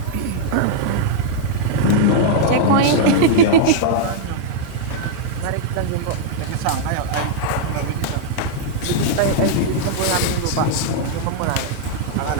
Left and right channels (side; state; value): both; different; correlation -0.01